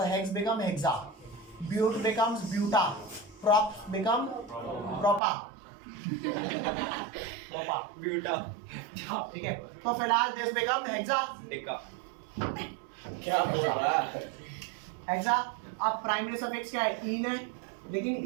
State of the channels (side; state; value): left; drops out; at 5.2 s